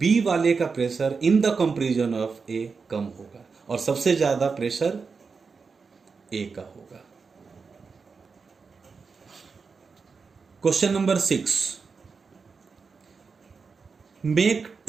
B वाले का pressure in the comparison of A कम होगा और सबसे ज्यादा प्रेशर A का होगा. Question number 6. Make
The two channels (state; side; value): quieter; left; 5.0 dB